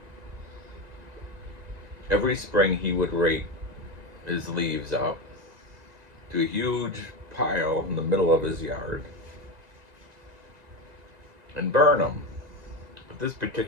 Every spring he would rake his leaves up to a huge pile in the middle of his yard and burn them. But this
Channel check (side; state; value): left; late; 1.9 ms